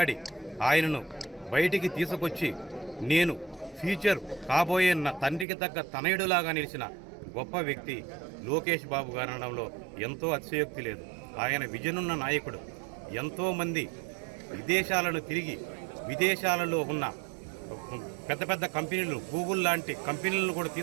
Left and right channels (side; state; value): left; drops out; at 5.5 s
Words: ఆయనను బయటికి తీసుకొచ్చి నేను ఫ్యూచర్ కాబోయే నా తండ్రికి తగ్గ తనయుడులాగా నిలిచిన గొప్ప వ్యక్తి లోకేష్ బాబు గారు అనడంలో ఎంతో అతిశయోక్తి లేదు. ఆయన విజనున్న నాయకుడు. ఎంతోమంది విదేశాలను తిరిగి విదేశాలలో ఉన్న పెద్ద పెద్ద కంపెనీలు, గూగుల్ లాంటి కంపెనీలను కూడా